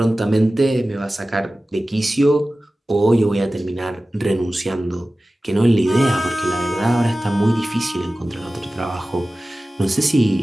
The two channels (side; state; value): both; normal; correlation 0.96